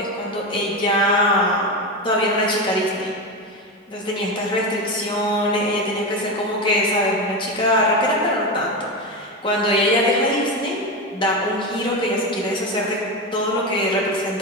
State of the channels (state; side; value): normal; both; correlation 0.17